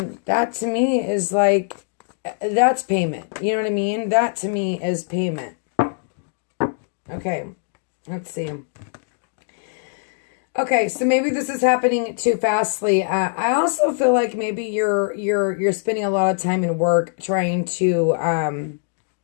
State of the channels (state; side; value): silent; right; digital silence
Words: to me is like, that's payment. You know what I mean? That to me is payment. Okay. Let's see. Okay, so maybe this is happening too fastly. I also feel like maybe you're spending a lot of time in work trying to